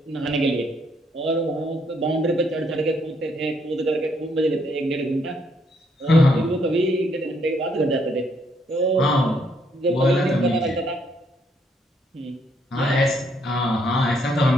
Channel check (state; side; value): normal; both; correlation 0.71